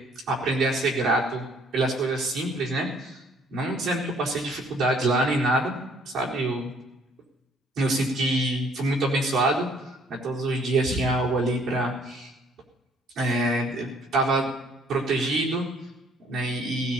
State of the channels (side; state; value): both; normal; correlation 0.61